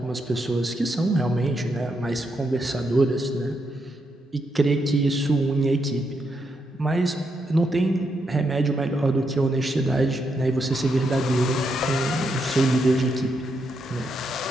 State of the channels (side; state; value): both; normal; correlation 0.81